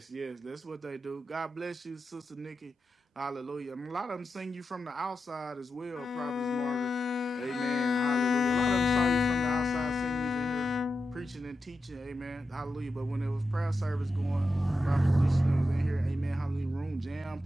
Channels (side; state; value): both; normal; correlation 0.89